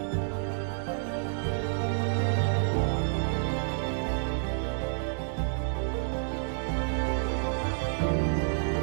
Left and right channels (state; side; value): silent; left; digital silence